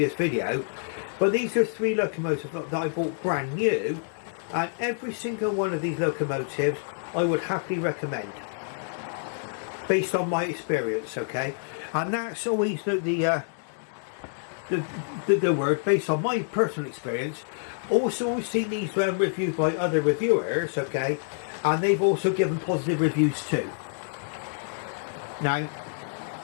video, but these are 3 locomotives that I bought brand new, and every single one of these locomotives I would happily recommend based on my experience, okay? And that's always the word, based on my personal experience. Also, we've seen these reviewed by other reviewers, okay, and they've also given positive reviews too. Now,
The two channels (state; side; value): silent; right; digital silence